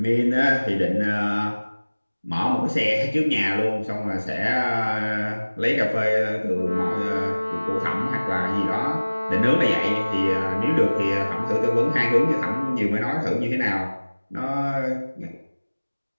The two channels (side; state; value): both; inverted; correlation -1.00